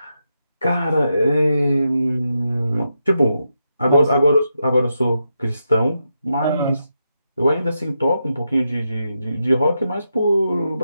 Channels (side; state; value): both; inverted; correlation -0.85